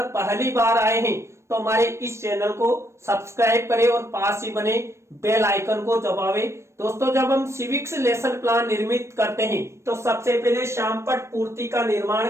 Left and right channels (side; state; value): left; late; 0.13 ms